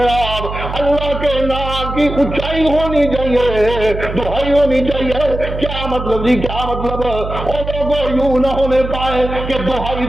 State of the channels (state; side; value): noise; right; hum, 7 dB below the sound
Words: اللہ کے نام کی اونچائی ہونی چاہیے، دہائی ہونی چاہیے۔ کیا مطلب جی، کیا مطلب، اور لوگوں یوں نہ ہونے پائے کہ دہائی